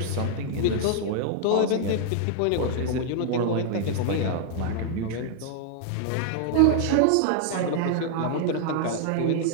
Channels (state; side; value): different; both; correlation -0.01